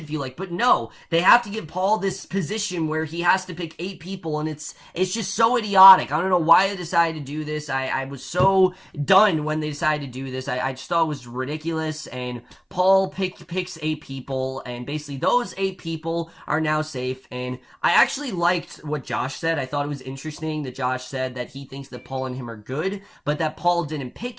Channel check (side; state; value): both; identical; correlation 1.00